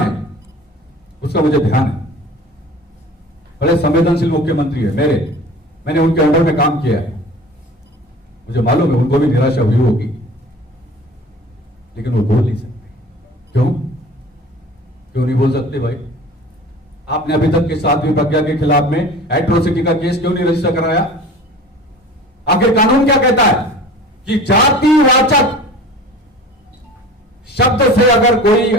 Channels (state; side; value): normal; both; correlation 0.41